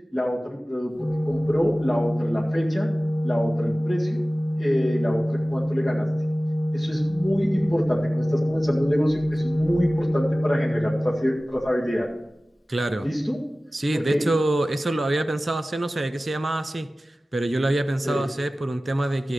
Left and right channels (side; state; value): both; normal; correlation 0.97